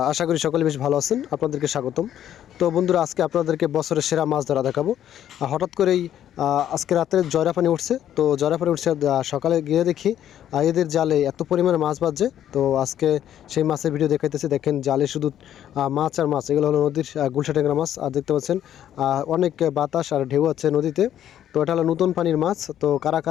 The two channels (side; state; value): right; quieter; 10.9 dB